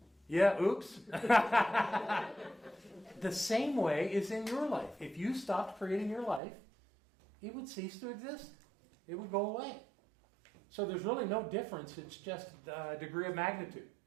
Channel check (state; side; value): drops out; left; at 6.4 s